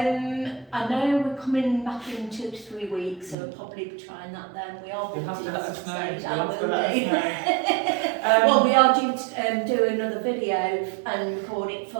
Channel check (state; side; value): drops out; left; at 3.4 s